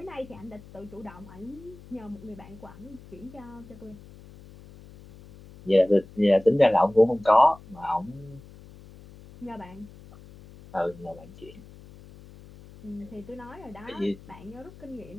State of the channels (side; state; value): left; noise; hum, 20 dB below the sound